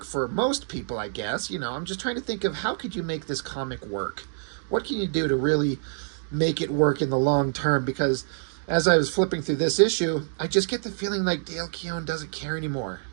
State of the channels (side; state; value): left; silent; digital silence